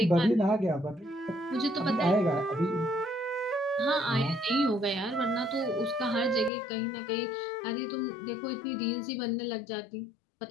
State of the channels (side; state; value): right; drops out; at 6.5 s